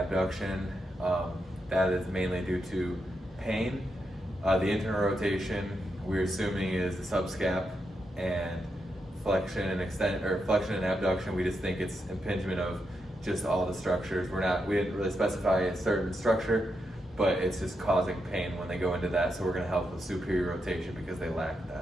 That is mainly due to pain. The internal rotation we're assuming is the subscap, and flexion and abduction, we just think it's impingement of just all the structures. We didn't really specify a certain structure, but it's just causing pain when they go into that. So we're going to help with superior rotation because they lack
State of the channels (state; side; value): normal; both; correlation 0.84